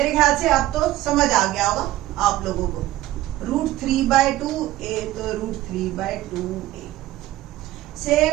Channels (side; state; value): left; quieter; 15.6 dB